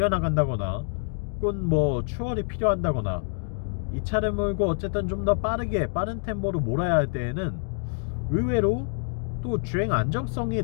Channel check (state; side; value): silent; right; digital silence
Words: 혹은 뭐 추월이 필요한다거나 이 차를 몰고 어쨌든 좀 더 빠른 템포로 몰아야 할 때에는 의외로 또 주행 안정성이